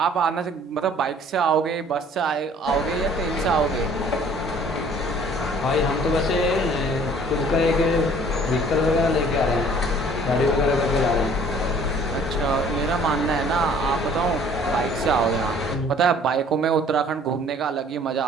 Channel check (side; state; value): both; normal; correlation 0.54